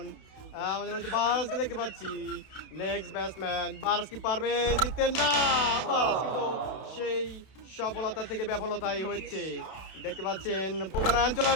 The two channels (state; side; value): late; right; 31 ms